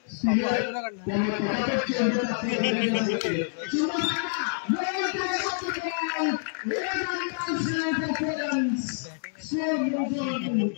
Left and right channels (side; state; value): right; silent; 60 dB below the other